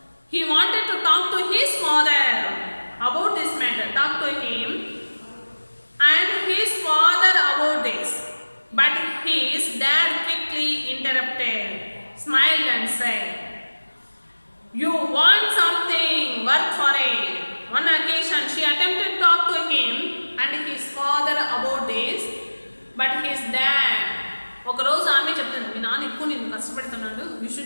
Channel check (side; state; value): both; inverted; correlation -1.00